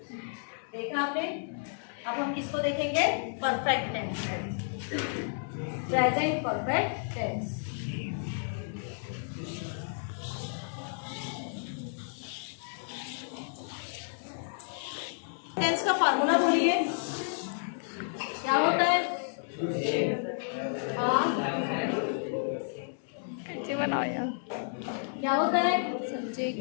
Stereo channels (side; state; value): right; silent; digital silence